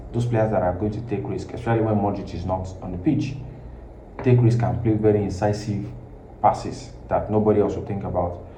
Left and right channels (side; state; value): both; identical; correlation 1.00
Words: those players that are going to take risk, especially when Madrid is not on the pitch. Take risk and play very incisive passes that nobody else will think about.